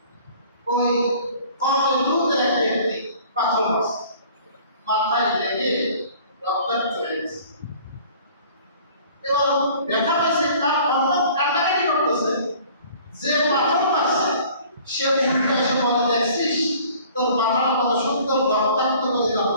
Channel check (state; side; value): inverted; both; correlation -0.50